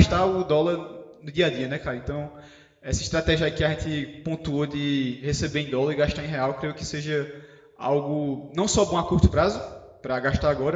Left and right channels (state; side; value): identical; both; correlation 1.00